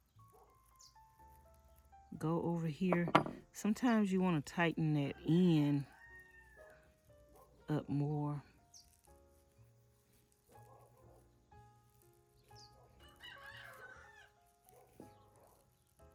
go over here. Sometimes you want to tighten that end up more.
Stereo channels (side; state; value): both; identical; correlation 1.00